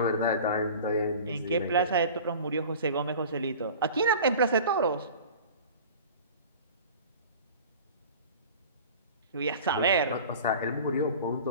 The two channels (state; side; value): inverted; both; correlation -0.39